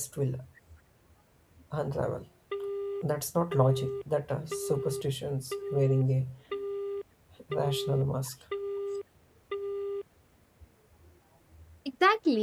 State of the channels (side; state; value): both; identical; correlation 1.00